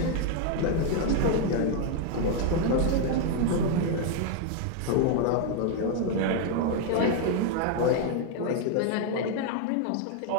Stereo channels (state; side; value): different; both; correlation 0.01